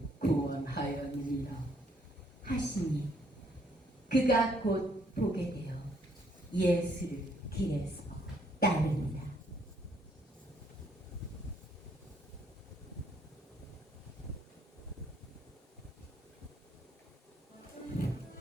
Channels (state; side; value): normal; both; correlation 0.68